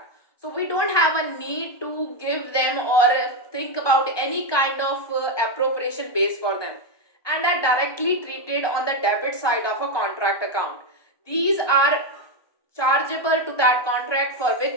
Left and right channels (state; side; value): late; right; 1.2 ms